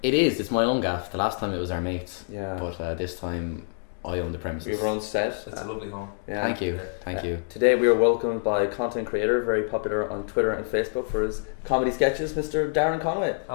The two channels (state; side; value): silent; right; digital silence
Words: It is. It's my own gaff. The last time it was our mates. Yeah. But this time I own the premises. We have our own set. It's a lovely home. Yeah. Thank you. Thank you. Today we are welcomed by a content creator, very popular on Twitter and Facebook for his comedy sketches, Mr. Darren Conway.